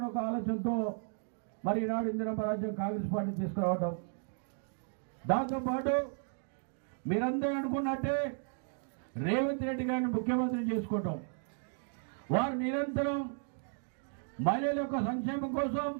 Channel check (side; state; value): left; silent; 55 dB below the other